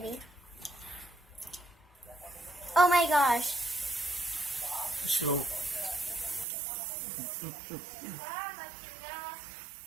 Oh my gosh. So,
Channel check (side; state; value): left; drops out; at 6.5 s